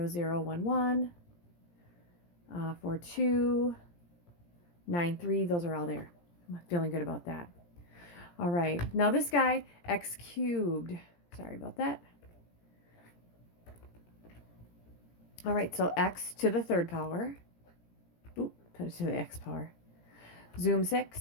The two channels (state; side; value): late; right; 17 ms